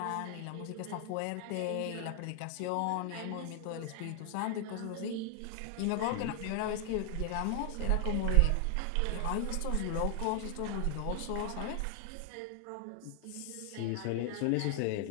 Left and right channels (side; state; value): both; different; correlation 0.00